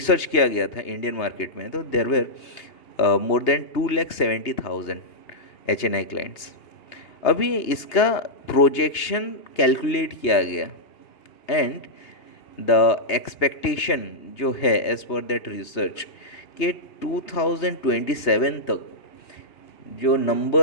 किया गया था इंडियन मार्केट में, तो there were more than 2,70,000 HNI clients. अभी इसका प्रोजेक्शन कैलकुलेट किया गया एंड द एक्सपेक्टेशन जो है एज पर दैट रिसर्च कि 2027 तक जो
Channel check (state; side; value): late; right; 2.8 ms